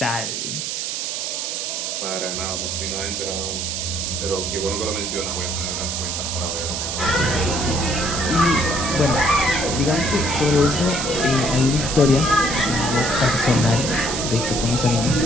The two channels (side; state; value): right; noise; hiss, 3 dB below the sound